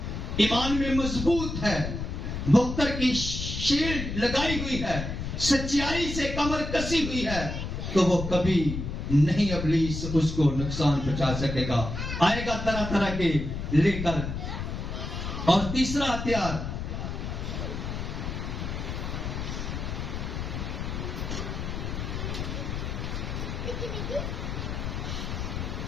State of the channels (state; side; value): noise; left; rumble, 4 dB below the sound